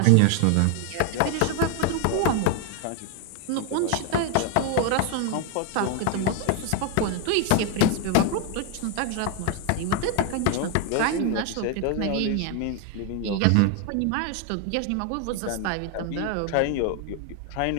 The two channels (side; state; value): both; different; correlation 0.00